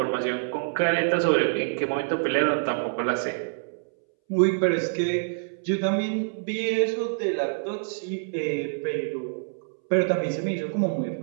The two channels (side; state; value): left; silent; 61 dB below the other